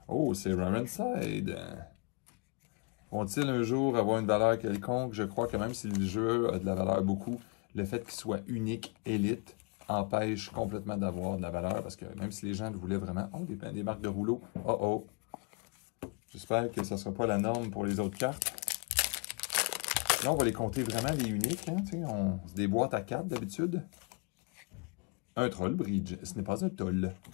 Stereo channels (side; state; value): right; quieter; 33.1 dB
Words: Oh, c'est Ramenside. Vont-ils un jour avoir une valeur quelconque? Je crois que même si le jeu a de la valeur beaucoup, le fait qu'il soit unique, élite, empêche complètement d'avoir de la valeur, parce que même si les gens le voulaient vraiment... Oh, des marques de rouleau. Oh, oh. J'espère que ça ne sera pas la norme pour les autres cartes. Là, on va les compter vraiment les uniques. Hein, on se déboîte à 4 d'habitude. Un troll bridge. Ce n'est pas un toll.